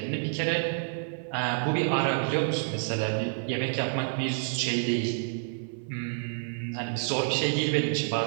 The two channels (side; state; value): left; silent; 59 dB below the other